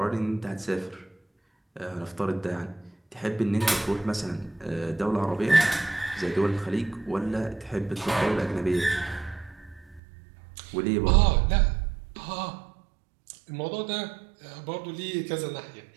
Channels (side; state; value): left; drops out; at 10.0 s